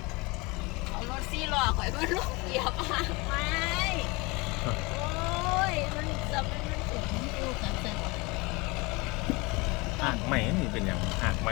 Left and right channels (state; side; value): quieter; right; 25.5 dB